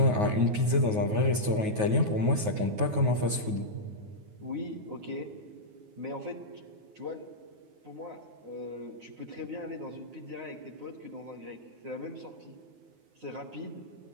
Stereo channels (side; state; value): left; late; 9.5 ms